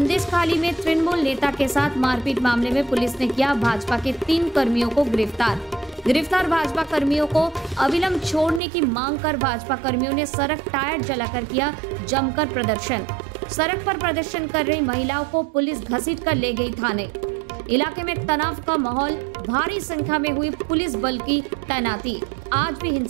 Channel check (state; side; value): drops out; left; at 8.6 s